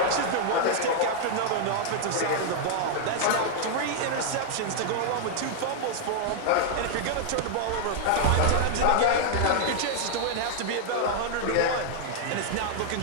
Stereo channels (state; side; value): different; both; correlation 0.00